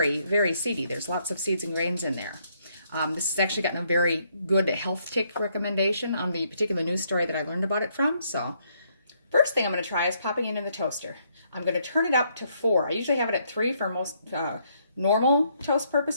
very seedy. There's lots of seeds and grains in there. This has actually gotten a very good health tick recommendation on the particular news story that I learned about it from. So first thing I'm going to try is popping it in the toaster. I'm going to turn it up to 4. I usually have it at 3 for most normal toast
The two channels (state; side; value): inverted; both; correlation -0.72